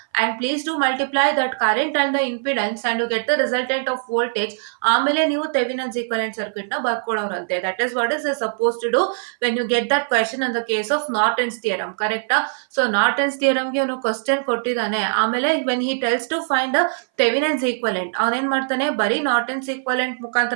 and please do multiply that current and the impedance and you get the resultant of voltage. ಆಮೇಲೆ ನೀವು ಥೆವಿನನ್ಸ್ equivalent circuit ನ ಬರ್ಕೊಳ್ಳೋರಂತೆ. That is what is suppose to do when you get that question in the case of Norton's theorem. ಕರೆಕ್ಟಾ? So Norton's ಥಿಯರಮ್ಗೆ ಅವನು question ಕೊಟ್ಟಿದ್ದಾನೆ. ಆಮೇಲೆ when he tells to find the Thevenin's equivalent, ಅವನೇನ್ ಮಾಡ್ತಾನೆ, ಬರೀ ನಾರ್ಟನ್ಸ್ ಈಕ್ವಲೆಂಟ್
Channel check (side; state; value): left; silent; 60 dB below the other